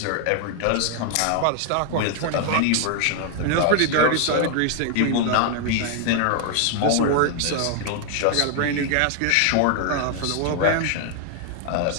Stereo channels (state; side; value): different; both; correlation 0.00